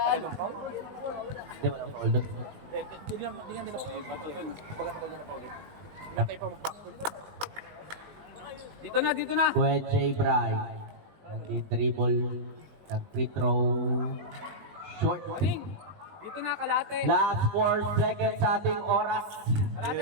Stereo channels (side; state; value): left; late; 19 ms